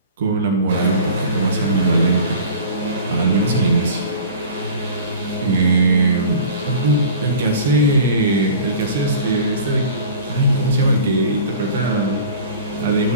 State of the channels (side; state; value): both; inverted; correlation -0.41